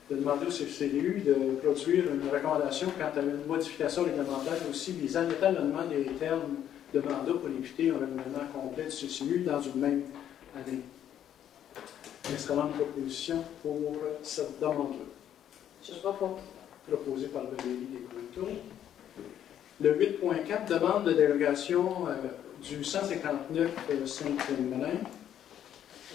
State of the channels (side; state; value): right; quieter; 10.3 dB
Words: De demander au CCU de produire une recommandation quant à une modification réglementaire aussi visant l'étalonnement des termes de mandat pour éviter un renouvellement complet du CCU dans une même année. Excellente proposition pour cette demande-là. Je propose. Proposée par le délit des Coultons. Le 8.4, demande de dérogation du 159 Saint-Féminin.